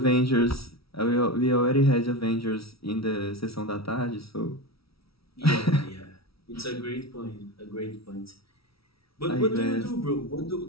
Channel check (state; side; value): late; right; 0.76 ms